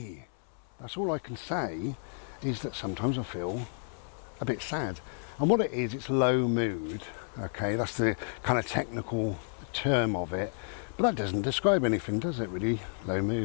That's all I can say, is that sometimes I feel a bit sad. And what it is, it's low mood, okay, that's the kind of technical term of it. But that doesn't describe anything, does it really? Low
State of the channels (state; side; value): silent; right; 57 dB below the other